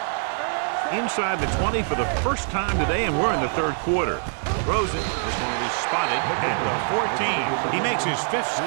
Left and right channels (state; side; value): silent; left; 60 dB below the other